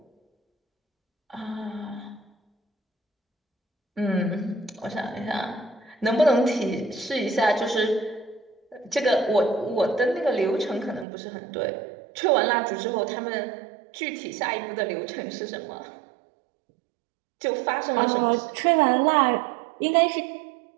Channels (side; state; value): left; drops out; at 11.1 s